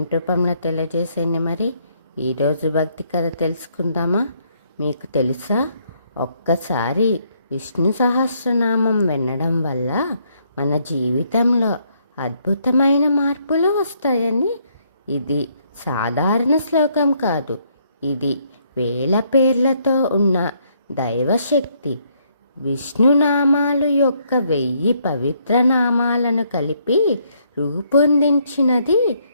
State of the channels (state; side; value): inverted; both; correlation -0.71